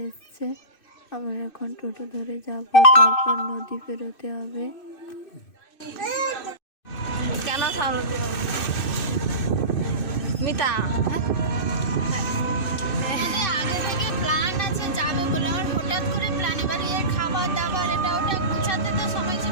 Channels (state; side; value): late; right; 2.6 ms